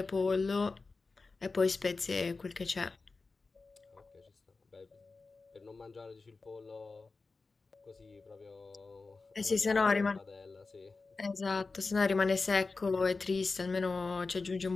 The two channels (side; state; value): right; quieter; 3.9 dB